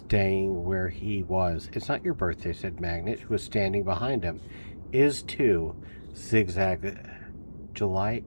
where he was. "It's not your birthday," said Magnet, who was standing behind him. "Is too." Zigzag. July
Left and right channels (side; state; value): both; inverted; correlation -1.00